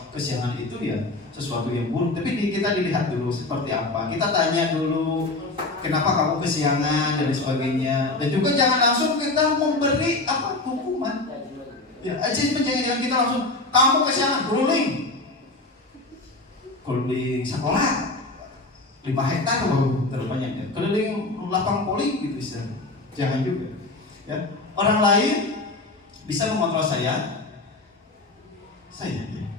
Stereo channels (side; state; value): right; quieter; 3.0 dB